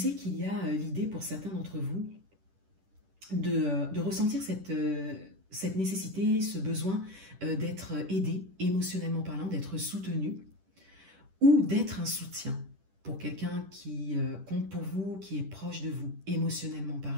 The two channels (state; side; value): late; left; 10 ms